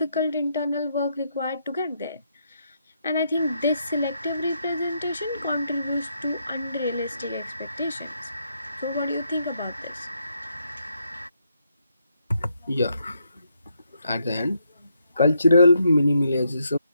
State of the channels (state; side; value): inverted; both; correlation -0.78